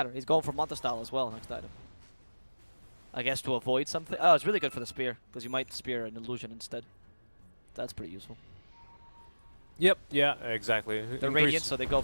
He's going for Manta style as well next item. I guess to avoid something. Oh, it's really good for the spear, because you might spear an illusion instead. That's pretty useful. Yep, yeah, exactly. They're radiant, so they go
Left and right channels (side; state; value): both; inverted; correlation -1.00